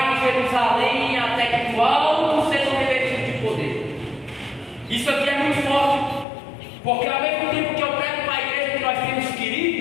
em Jerusalém até que do alto sejam revestidos de poder. Isso aqui é muito forte, porque ao mesmo tempo que eu prego para a igreja que nós temos que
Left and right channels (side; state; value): right; drops out; at 6.2 s